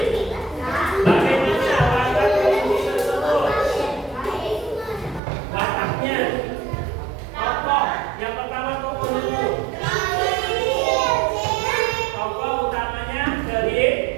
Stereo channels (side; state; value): left; drops out; at 5.2 s